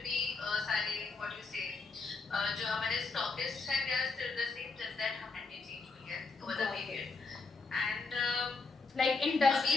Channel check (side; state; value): right; quieter; 4.1 dB